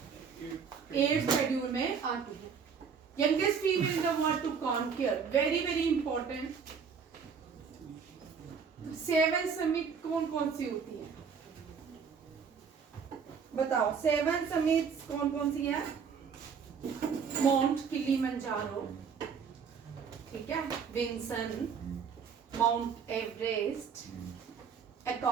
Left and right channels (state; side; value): quieter; left; 6.4 dB